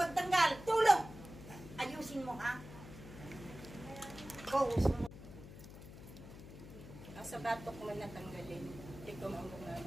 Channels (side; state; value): left; noise; hum, 14 dB below the sound